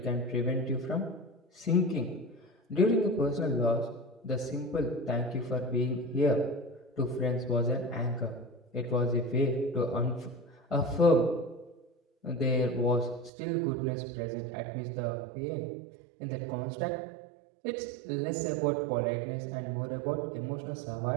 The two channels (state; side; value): drops out; left; at 13.3 s